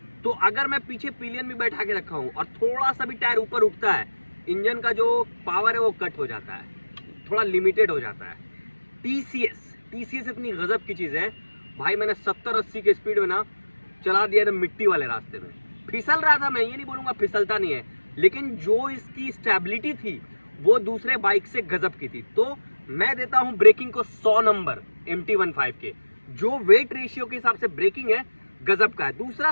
तो अगर मैं पीछे पिलियन भी बैठा के रखा हूँ और थोड़ा सा भी टायर ऊपर उठता है, इंजन का जो पावर है वो कट हो जाता है, थोड़ा लिमिटेड हो जाता है। TCS इतनी गजब की चीज़ है भाई, मैंने 70-80 के स्पीड में ना चला दिया था मिट्टी वाले रास्ते में। फिसल रहा था, मैं ये नहीं बोलूँगा फिसलता नहीं है, लेकिन जो इसकी स्टेबिलिटी थी वो दूसरे बाइक से गजब की थी। तो मैं देता हूँ ब्रेकिंग को 100 नंबर MT-15 के। जो वेट रेशियो के हिसाब से ब्रेकिंग है, गजब का है। दूसरा,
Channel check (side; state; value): both; inverted; correlation -1.00